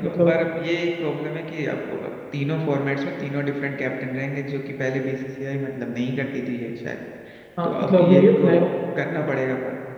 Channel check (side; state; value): both; identical; correlation 1.00